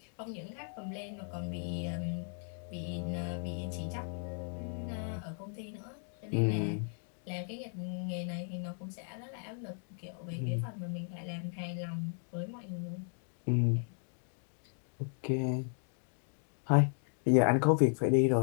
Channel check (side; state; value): right; silent; 54 dB below the other